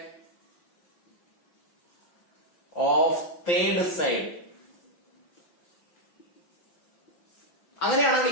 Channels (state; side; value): late; right; 5.8 ms